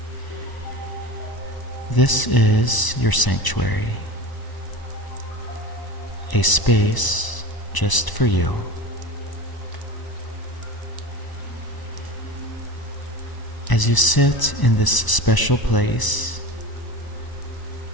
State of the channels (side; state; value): right; late; 1.0 ms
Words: This is your sanctuary, a space just for you. As you sit in this special place,